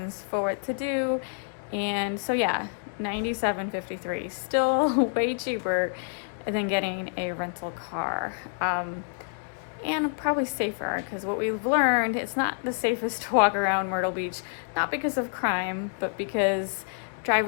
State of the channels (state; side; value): silent; right; 57 dB below the other